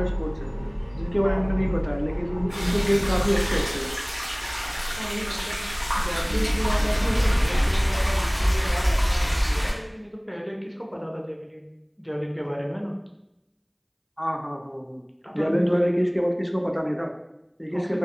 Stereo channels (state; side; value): identical; both; correlation 1.00